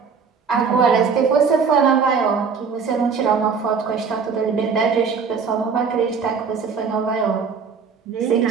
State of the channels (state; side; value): quieter; left; 5.8 dB